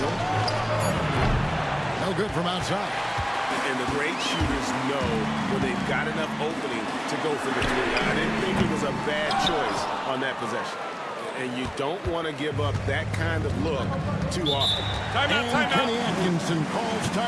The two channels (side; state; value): both; identical; correlation 1.00